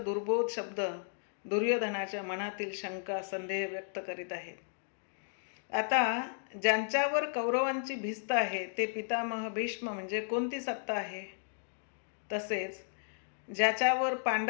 शब्द दुर्योधनाच्या मनातील शंका संदेह व्यक्त करीत आहेत. आता ज्यांच्यावर कौरवांची भिस्त आहे ते पितामह भीष्म म्हणजे कोणती सत्ता आहे, तसेच ज्याच्यावर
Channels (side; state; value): right; silent; digital silence